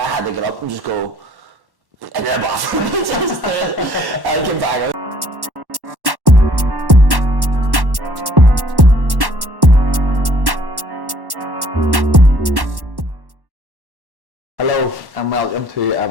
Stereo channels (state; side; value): late; left; 1.1 ms